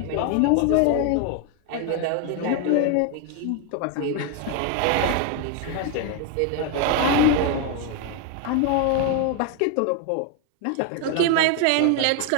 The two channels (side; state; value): both; different; correlation 0.01